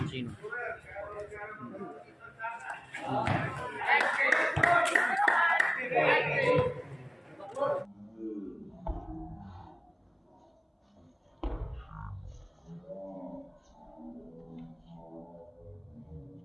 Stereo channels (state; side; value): identical; both; correlation 1.00